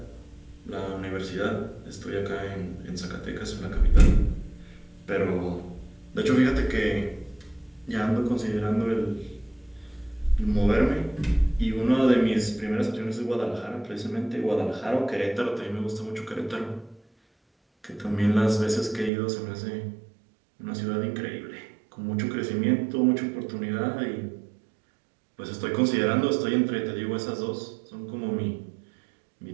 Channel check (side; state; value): left; drops out; at 19.1 s